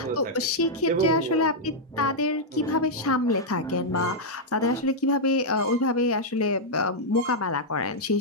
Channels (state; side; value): normal; both; correlation -0.04